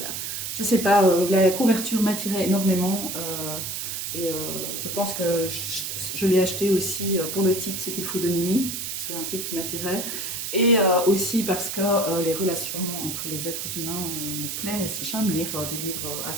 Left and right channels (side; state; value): right; noise; hiss, 4 dB below the sound